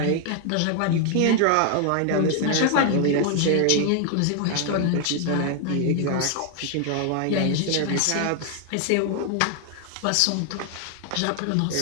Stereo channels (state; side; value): different; both; correlation 0.00